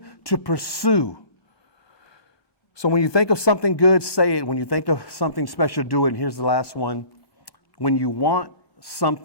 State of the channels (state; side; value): late; right; 1.1 ms